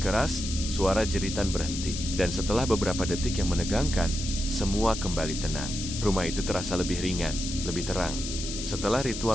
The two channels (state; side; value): noise; left; hiss, 6 dB below the sound